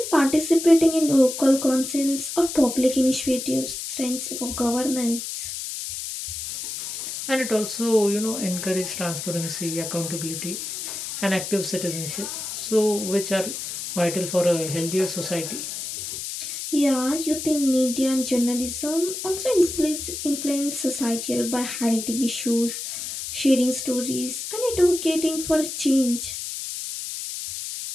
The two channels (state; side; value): noise; left; hiss, 6 dB below the sound